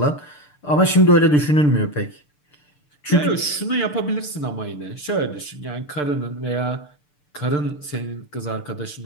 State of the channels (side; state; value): right; late; 6.8 ms